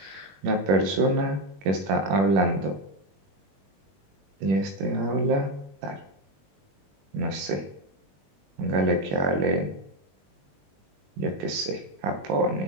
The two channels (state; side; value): late; left; 21 ms